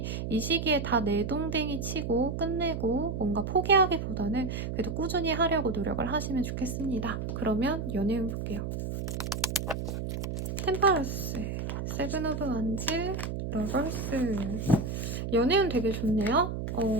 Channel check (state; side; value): noise; right; hum, 4 dB below the sound